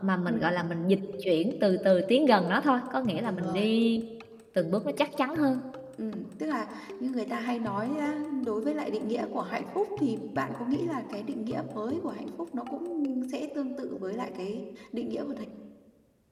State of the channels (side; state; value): both; identical; correlation 1.00